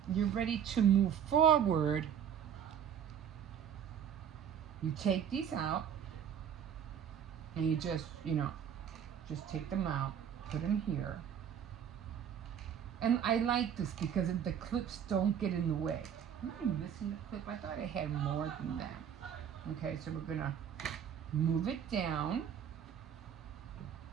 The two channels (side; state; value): left; quieter; 8.6 dB